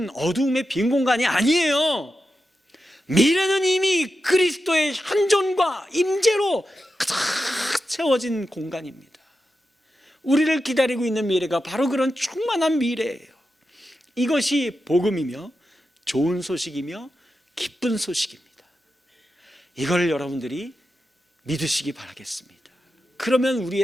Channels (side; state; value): both; normal; correlation 0.90